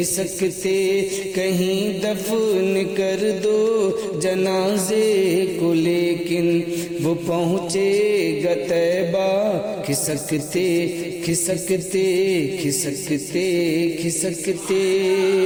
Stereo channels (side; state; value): both; identical; correlation 1.00